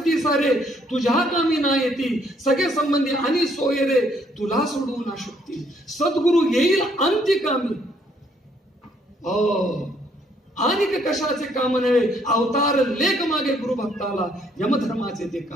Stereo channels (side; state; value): both; normal; correlation 0.68